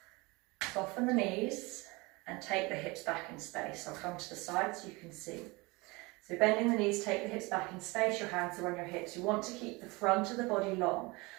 Soften the knees and take the hips back in space. I'll come to the side so you can see. So bending the knees, take the hips back in space. Your hands are on your hips. You want to keep the front of the body long.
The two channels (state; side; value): quieter; left; 24.7 dB